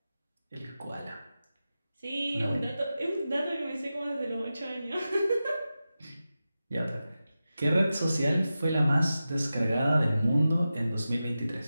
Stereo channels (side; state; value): both; inverted; correlation -0.93